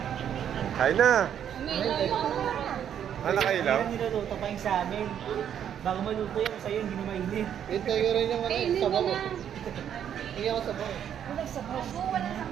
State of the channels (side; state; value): left; quieter; 9.3 dB